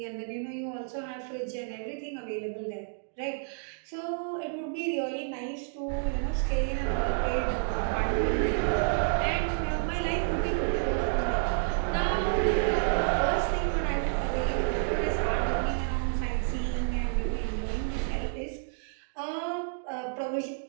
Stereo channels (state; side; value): silent; left; digital silence